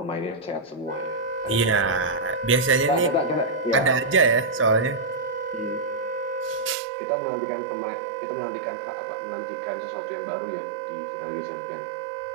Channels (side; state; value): left; drops out; at 6.8 s